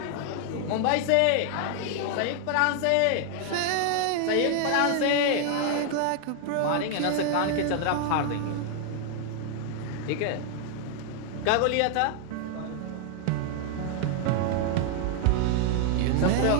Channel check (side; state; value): both; different; correlation 0.00